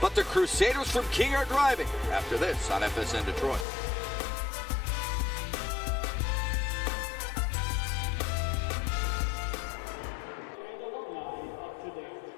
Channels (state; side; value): drops out; right; at 3.7 s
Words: the Crusaders from King are driving after this on FSN Detroit.